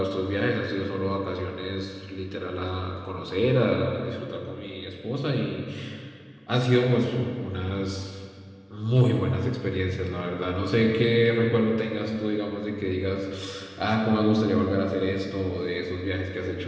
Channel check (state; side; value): identical; both; correlation 1.00